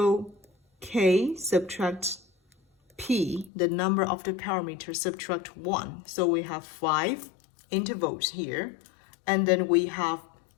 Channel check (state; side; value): drops out; right; at 3.5 s